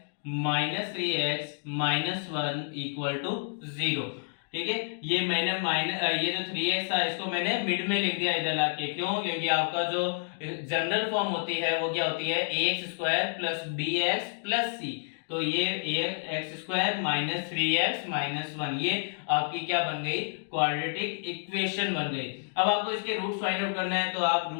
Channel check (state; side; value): silent; right; digital silence